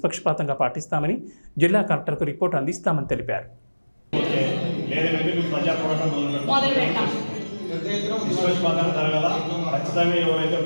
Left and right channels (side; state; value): both; inverted; correlation -1.00